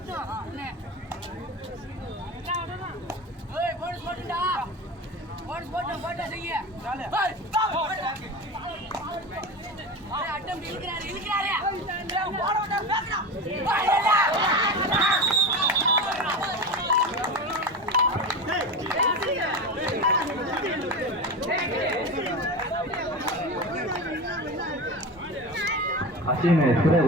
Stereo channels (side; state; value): both; normal; correlation 0.25